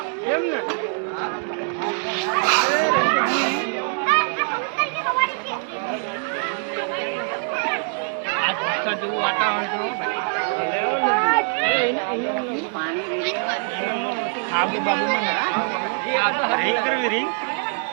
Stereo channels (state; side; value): silent; left; 55 dB below the other